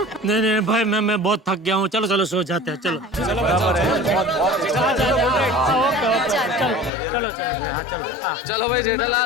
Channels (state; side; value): drops out; right; at 6.9 s